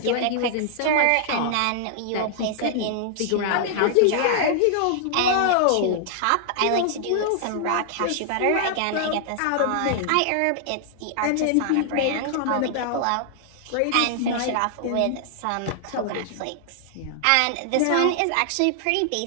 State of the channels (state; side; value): different; both; correlation -0.01